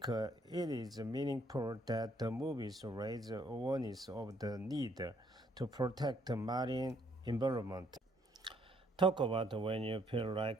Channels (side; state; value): both; normal; correlation 0.67